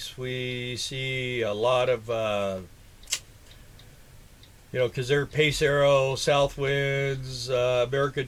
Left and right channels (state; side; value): identical; both; correlation 1.00